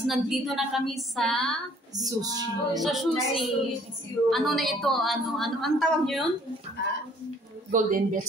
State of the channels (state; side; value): normal; both; correlation 0.59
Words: nandito na kami sa sushi. Sa sushi. Ano na ito? Ang tawag niyo yun? Golden